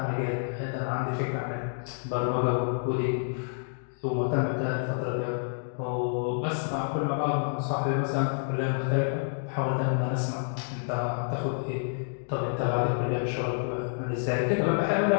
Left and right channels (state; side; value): silent; right; digital silence